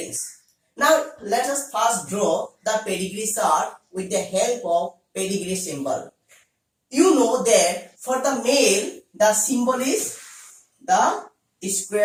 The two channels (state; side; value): identical; both; correlation 1.00